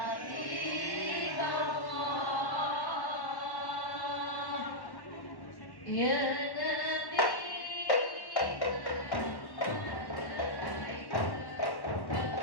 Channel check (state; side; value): late; right; 1.1 ms